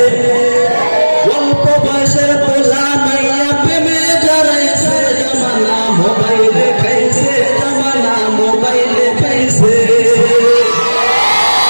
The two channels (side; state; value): both; inverted; correlation -1.00